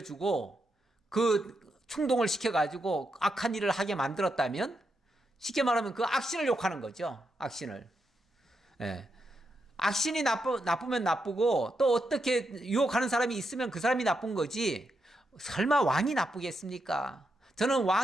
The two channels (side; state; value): both; normal; correlation 0.83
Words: 그 충동을 시켜가지고 악한 일을 하게 만들었다면 쉽게 말하면 그 악신을 욕하는 거죠. 악신을. 예. 악신이 나쁘면 나쁘고 또 어떻게 유혹하는 사람이 있으면 그 사람이 나쁜 거지 설마 왕이 나쁘겠습니까? 저는